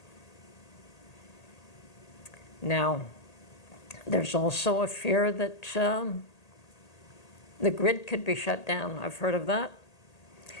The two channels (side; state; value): right; late; 1.8 ms